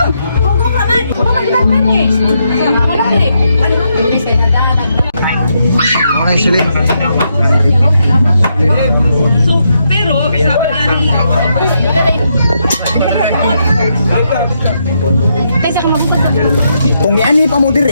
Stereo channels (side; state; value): both; inverted; correlation -0.80